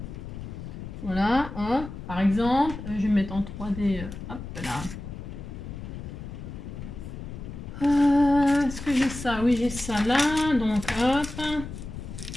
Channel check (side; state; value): left; noise; rumble, 10 dB below the sound